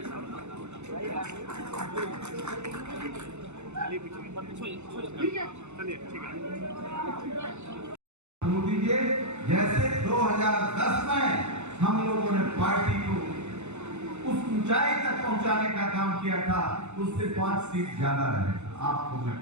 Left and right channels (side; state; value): left; late; 0.83 ms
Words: दीजिए। जैसे 2010 में हम लोगों ने पार्टी को उस ऊंचाई तक पहुंचाने का काम किया था, उससे 5 सीट ज्यादा रहे आपको मैं